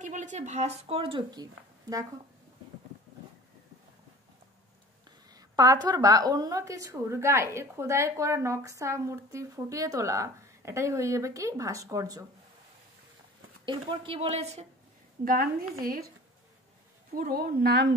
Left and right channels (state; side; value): normal; both; correlation 0.42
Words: কি বলেছে, ভাস্কর্য কি? দেখো, পাথর বা অন্য কিছুর গায়ে খোদাই করা নকশা মূর্তি ফুটিয়ে তোলা, এটাই হয়ে যাবে কি ভাস্কর্য। এরপর কি বলেছে, গান্ধীজির পুরো নাম